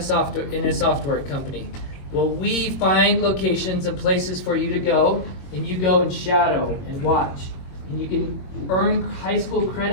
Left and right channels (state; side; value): late; right; 22 ms